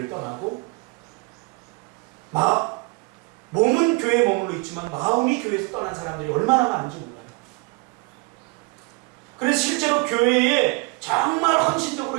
떠나고 몸은 교회에 머물러 있지만 마음이 교회에서 떠난 사람들이 얼마나 많은지 몰라요. 그래서 실제로 교회에 정말 헌신적으로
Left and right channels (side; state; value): left; quieter; 27.5 dB